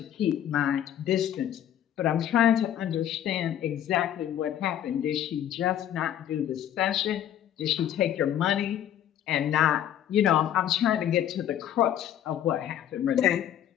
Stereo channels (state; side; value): quieter; right; 10.8 dB